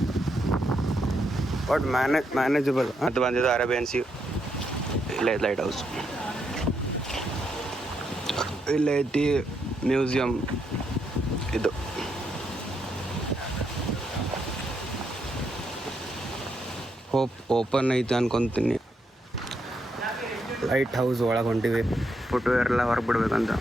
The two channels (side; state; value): both; normal; correlation 0.79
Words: ಬಟ್ ಮ್ಯಾನೇಜಬಲ್ ಅಂತ ಬಂದಿದ್ದು ಅರೇಬಿಯನ್ ಸಿ. ಇಲ್ಲೇ ಲೈಟ್ ಹೌಸ್, ಇಲ್ಲೇ ಐತಿ ಮ್ಯೂಸಿಯಂ. ಇದು ಹೋಪ್ ಓಪನ್ ಐತೆ ಅನ್ಕೊತೀನಿ. ಲೈಟ್ ಹೌಸ್ ಒಳಗೆ ಹೊಂಟಿವಿ. ಫುಟ್ವೇರ್ ಎಲ್ಲ ಹೊರಗೆ ಬಿಡ್ಬೇಕಂತ.